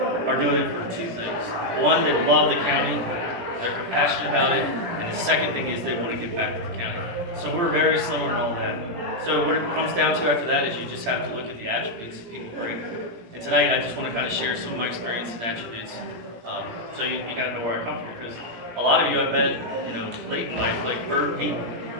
are doing it for 2 things. One, they love the county, they're compassionate about it, and the second thing is they want to give back to the county. So we're very similar in all that. So what it comes down to after that is you just have to look at the attributes that people bring. And tonight I just want to kind of share some of my experience and attributes. So you got to know where I come from, because a lot of you I met, late in life, like Bert, he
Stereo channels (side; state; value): left; late; 17 ms